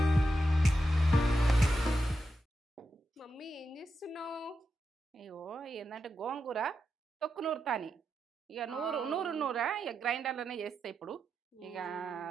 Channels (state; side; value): normal; both; correlation 0.87